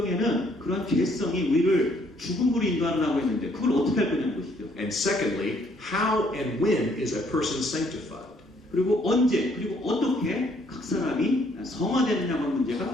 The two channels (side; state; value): both; normal; correlation 0.66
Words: 그런 죄성이 우리를 죽음으로 인도하라고 했는데 그걸 어떻게 할 거냐는 것이죠. And secondly, how and when is a person sanctified? 그리고 언제 그리고 어떻게 각 사람이 성화되느냐고 하는